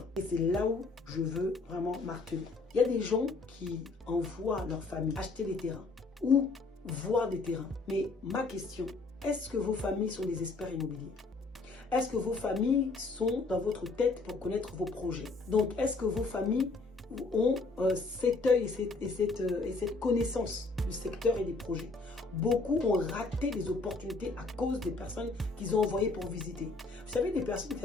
Et c'est là où je veux vraiment marteler. Il y a des gens qui envoient leur famille acheter des terrains ou voir des terrains. Mais ma question, est-ce que vos familles sont des experts immobiliers? Est-ce que vos familles sont dans votre tête pour connaître vos projets? Donc, est-ce que vos familles ont cet œil et cette connaissance du secteur et des projets? Beaucoup ont raté des opportunités à cause des personnes qu'ils ont envoyées pour visiter. Vous savez, des personnes qui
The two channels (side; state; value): right; quieter; 3.7 dB